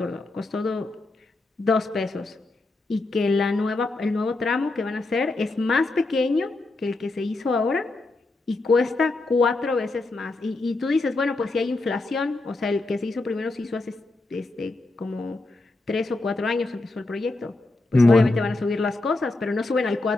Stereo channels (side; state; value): right; quieter; 3.1 dB